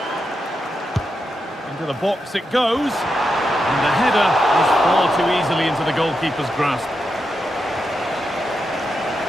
Into the box it goes, and the header is far too easily into the goalkeeper's grasp.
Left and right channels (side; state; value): both; normal; correlation 0.86